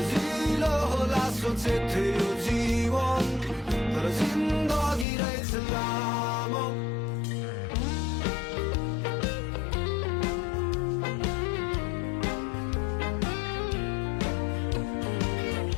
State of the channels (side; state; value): right; drops out; at 5.1 s